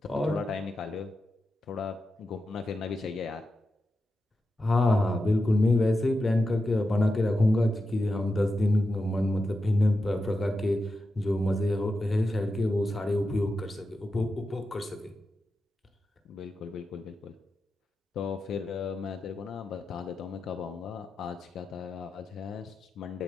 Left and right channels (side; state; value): both; normal; correlation 0.90